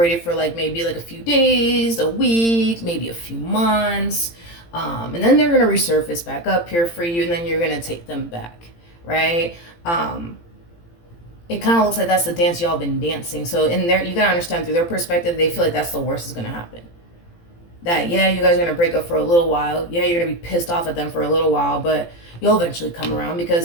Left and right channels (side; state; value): right; late; 18 ms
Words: for maybe a few days, a week, maybe a few months. And then they're going to resurface back up here for you, and then you're going to take them back, right? It kind of looks like that's the dance y'all been dancing. So you got to understand, through their perspective, they feel like that's the worst that's going to happen. That, you guys are going to break up for a little while. You're going to be pissed off at them for a little while, but you'll eventually come around,